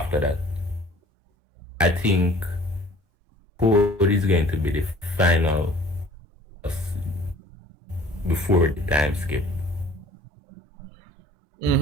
that. I think Code is going to be the final before the time skip.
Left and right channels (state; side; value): normal; both; correlation 0.51